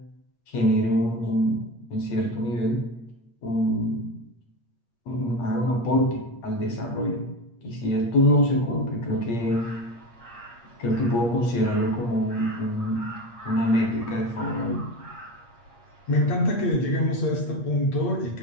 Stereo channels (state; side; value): late; right; 8.5 ms